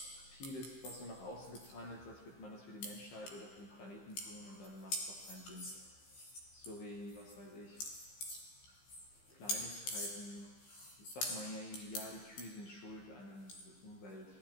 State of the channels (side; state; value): right; late; 15 ms